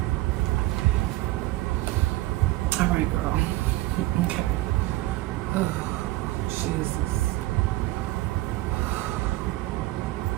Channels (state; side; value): quieter; left; 17.8 dB